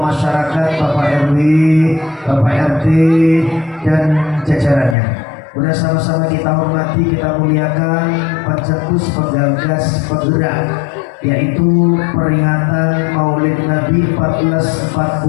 Bapak RW, Bapak RT, dan jajarannya. Kemudian sama-sama kita hormati, kita muliakan pencetus, penggagas, penggerak, yaitu peringatan Maulid Nabi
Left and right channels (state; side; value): drops out; right; at 5.0 s